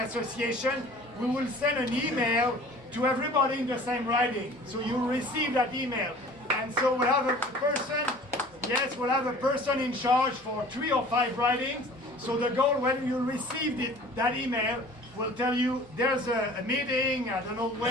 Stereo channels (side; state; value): both; normal; correlation 0.46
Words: we will send an email to everybody in the same riding. So you'll receive that email. And so we'll have a person, yes, we'll have a person in charge for 3 or 5 ridings. So the goal, when you receive that email, will tell you there's a meeting, I don't know